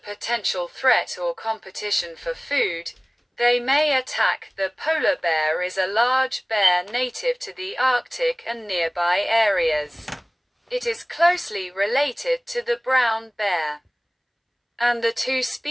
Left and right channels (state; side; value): identical; both; correlation 1.00